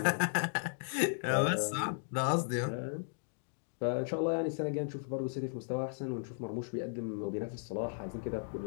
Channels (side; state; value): right; silent; digital silence